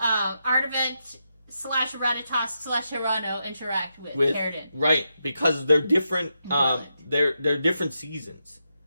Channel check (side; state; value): both; inverted; correlation -0.85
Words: Artivent / Ratatosk / Hirano interact with Carradine? Right, because they're different. They're different seasons.